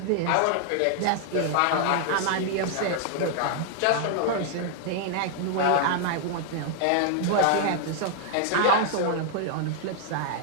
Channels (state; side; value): different; both; correlation 0.00